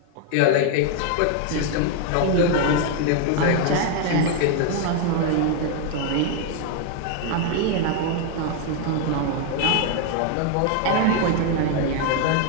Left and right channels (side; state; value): both; different; correlation 0.01